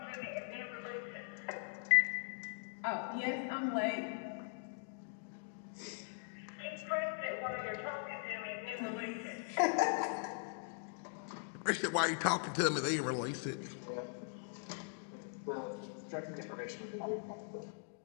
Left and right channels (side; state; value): right; silent; digital silence